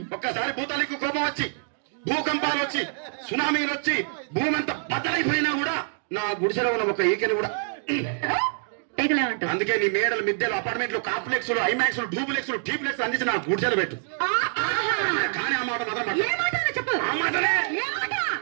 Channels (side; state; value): left; silent; 61 dB below the other